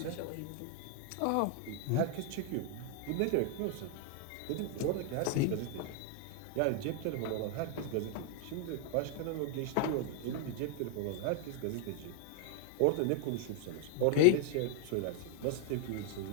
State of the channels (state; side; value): different; both; correlation 0.00